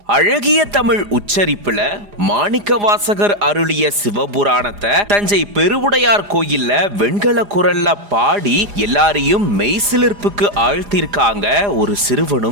அழகிய தமிழ் உச்சரிப்புல மாணிக்கவாசகர் அருளிய சிவபுராணத்தை தஞ்சை பெருவுடையார் கோயில்ல வெண்கல குரல்ல பாடி எல்லாரையும் மெய்சிலிர்ப்புக்கு ஆழ்த்திருக்காங்க ஒரு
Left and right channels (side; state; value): left; late; 4.9 ms